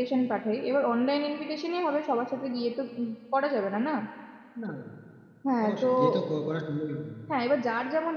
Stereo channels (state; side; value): identical; both; correlation 1.00